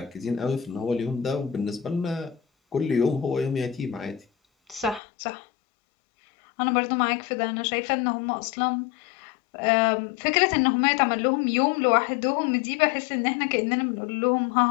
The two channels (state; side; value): drops out; right; at 5.0 s